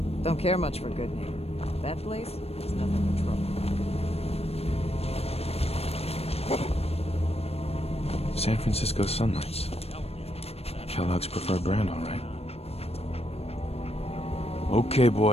Don't care much for good name. That place is nothing but trouble. San Francisco Sunlights. Kellogg's preferred brand, all right. Okay,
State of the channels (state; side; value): late; right; 0.29 ms